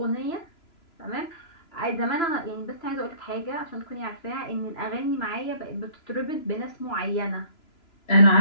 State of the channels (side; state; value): right; late; 3.0 ms